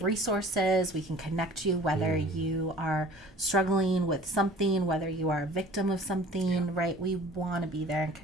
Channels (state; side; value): normal; both; correlation 0.47